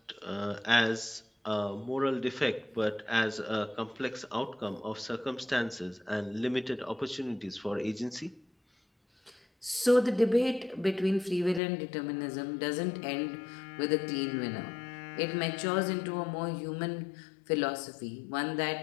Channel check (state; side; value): drops out; right; at 11.6 s